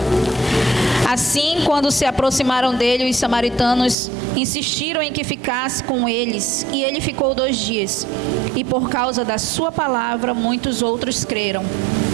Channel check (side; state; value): left; drops out; at 4.0 s